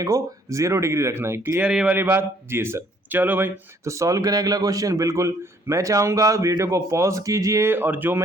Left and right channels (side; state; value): both; normal; correlation 0.62